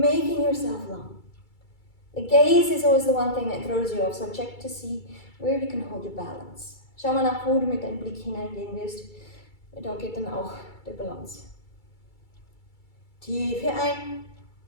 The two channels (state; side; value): late; right; 2.3 ms